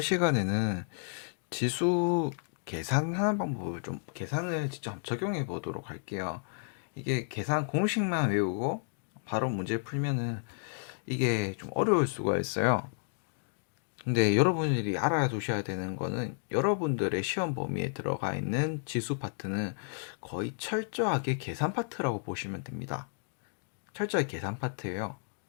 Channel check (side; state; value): right; silent; digital silence